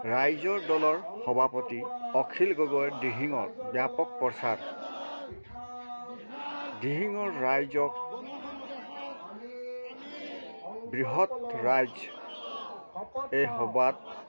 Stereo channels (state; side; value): inverted; both; correlation -1.00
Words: ৰাইজৰ দলৰ সভাপতি অখিল গগৈৰ দিহিঙৰ ব্যাপক প্ৰচাৰ। দিহিঙৰ ৰাইজক বৃহৎ ৰাইজ এই সভাত